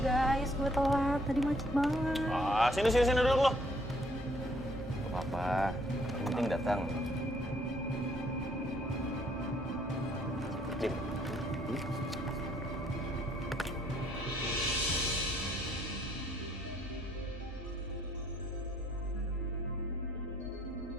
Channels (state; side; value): normal; both; correlation 0.65